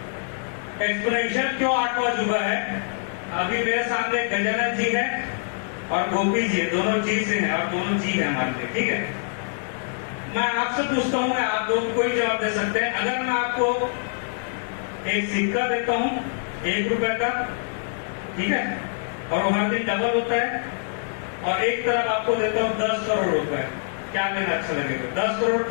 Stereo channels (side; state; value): right; silent; digital silence